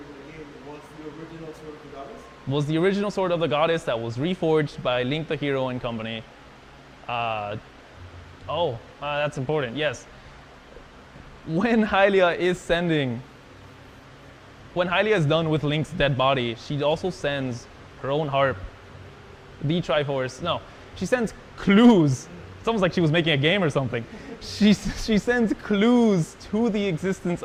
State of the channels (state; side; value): identical; both; correlation 1.00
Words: in the game. Was the original Sword of the Goddess? Was the original Sword of the Goddess that was reforged by Link the Hero and company. That's important, yes. When Hylia is done with Link's dead body, she also sends her own harp, the Triforce. No, she sends clues. It's almost like she was making a game or something. She sends clues to the existence